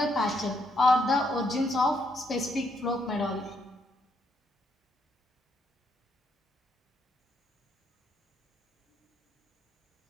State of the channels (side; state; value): both; normal; correlation 0.75